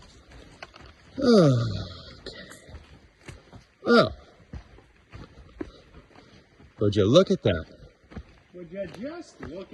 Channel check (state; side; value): identical; both; correlation 1.00